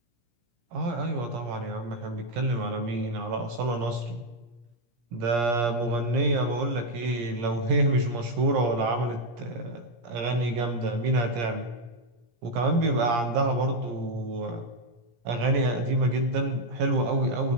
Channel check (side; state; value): left; late; 17 ms